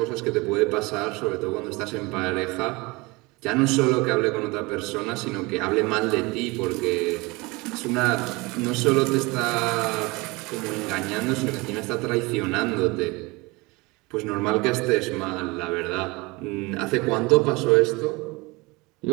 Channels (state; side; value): quieter; left; 24.5 dB